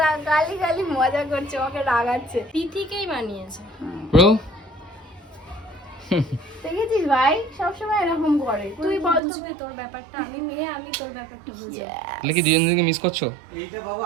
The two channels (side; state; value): left; drops out; at 9.2 s